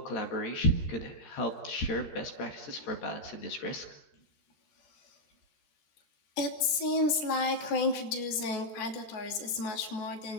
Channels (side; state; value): right; late; 13 ms